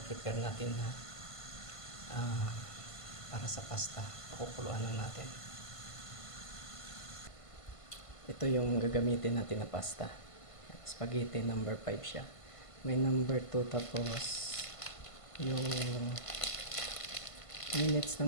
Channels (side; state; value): right; late; 1.5 ms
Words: natin na para sa pasta. Pakukuluan lang natin. Ito yung gagamitin natin na pasta. Spaghetti number 5 siya. May number 2, tapos yung minutes